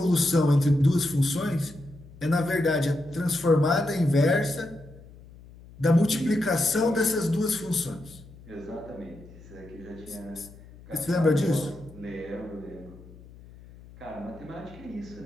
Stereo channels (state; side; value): noise; left; hum, 20 dB below the sound